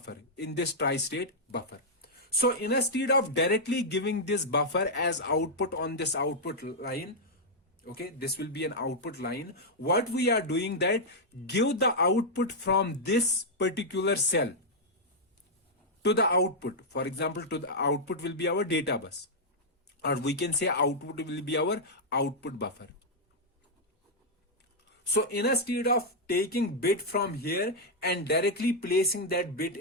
in this tri-state buffer. So instead of directly giving this buffer as output on this output line, okay, this will be an output line, what we are doing that give the output from this particular cell to the output. For example, to the output will be our data bus, or we can say output will be our output buffer. So instead of taking bit from here and directly placing that bit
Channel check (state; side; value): normal; both; correlation -0.04